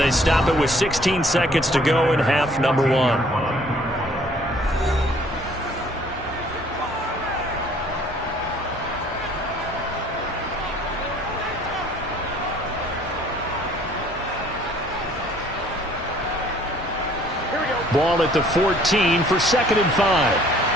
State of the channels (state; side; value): normal; both; correlation 0.58